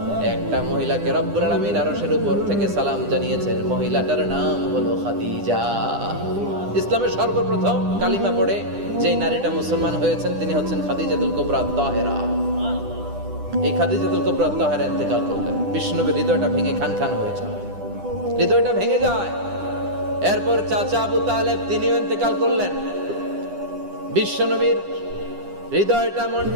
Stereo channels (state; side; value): late; left; 10 ms